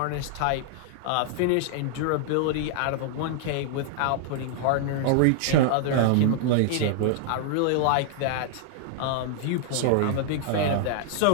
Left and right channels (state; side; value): different; both; correlation -0.01